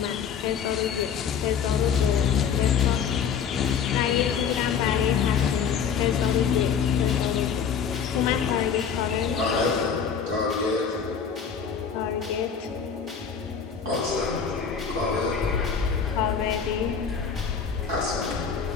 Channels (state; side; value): quieter; right; 6.9 dB